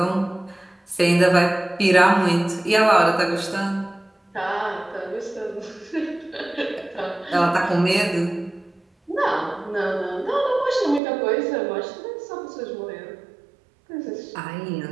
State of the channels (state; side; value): drops out; left; at 11.0 s